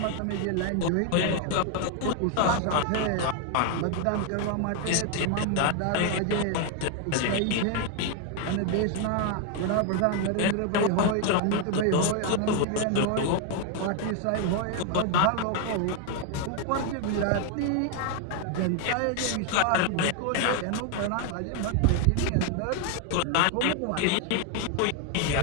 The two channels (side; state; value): both; different; correlation 0.01